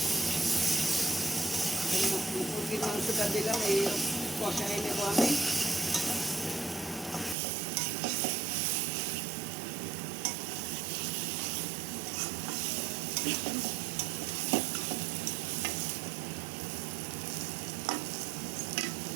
মুরগির মাংসটা দিলাম, এই কষাই নেব আমি।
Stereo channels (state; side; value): drops out; left; at 7.4 s